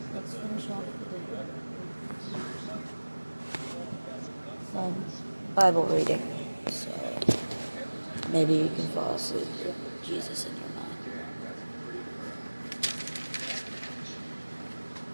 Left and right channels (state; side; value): inverted; both; correlation -1.00